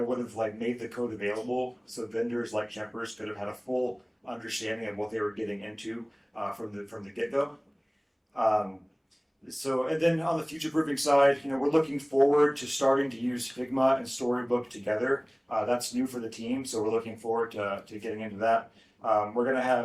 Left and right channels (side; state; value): both; identical; correlation 1.00